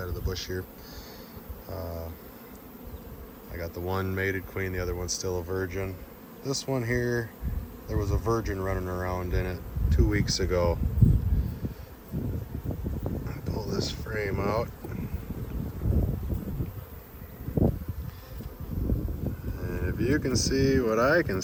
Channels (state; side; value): identical; both; correlation 1.00